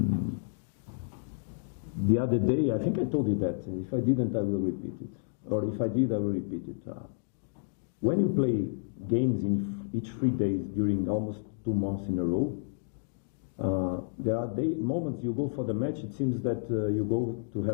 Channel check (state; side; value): silent; right; digital silence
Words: The other day, I think I told you that if I didn't, I will repeat it, or if I did, I will repeat it. When you play games in each 3 days during almost 2 months in a row, there are moments you go for the match, it seems that you go to